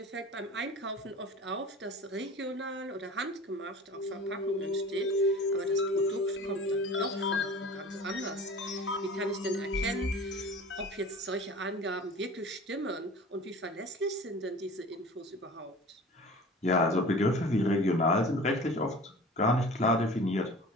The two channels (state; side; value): normal; both; correlation 0.40